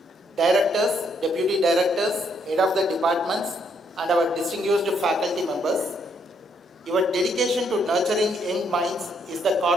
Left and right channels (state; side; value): normal; both; correlation 0.72